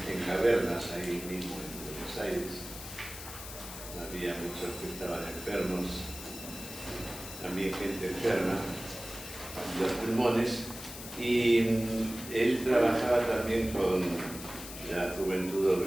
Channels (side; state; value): left; noise; hiss, 11 dB below the sound